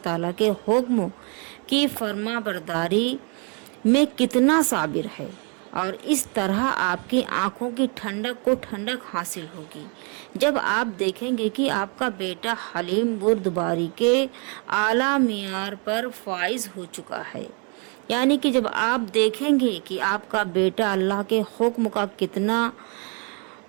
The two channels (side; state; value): left; quieter; 35.7 dB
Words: تعالیٰ کے حکم کی فرما برداری میں کتنا صابر ہے، اور اس طرح آپ کی آنکھوں کی ٹھنڈک کو ٹھنڈک حاصل ہوگی جب آپ دیکھیں گے کہ آپ کا بیٹا حلیم بردباری کے اعلیٰ معیار پر فائز ہو چکا ہے۔ یعنی کہ جب آپ دیکھیں گے کہ آپ کا بیٹا اللہ کے حکم کا کتنا